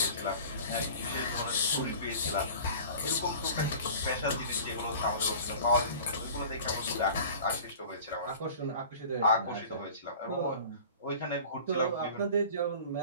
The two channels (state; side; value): inverted; both; correlation -0.41